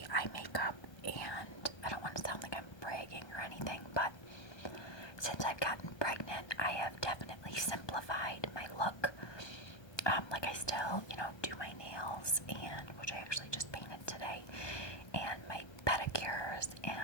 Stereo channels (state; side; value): late; right; 1.3 ms